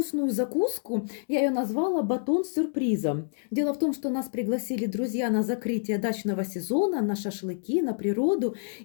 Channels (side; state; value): right; silent; digital silence